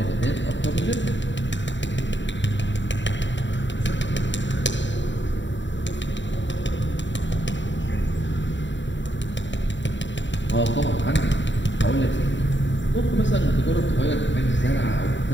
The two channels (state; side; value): late; right; 0.54 ms